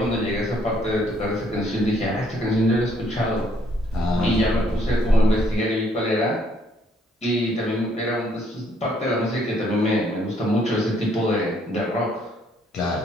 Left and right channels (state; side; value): normal; both; correlation 0.67